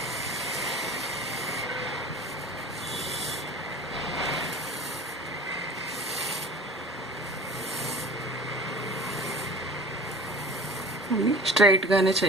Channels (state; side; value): normal; both; correlation 0.41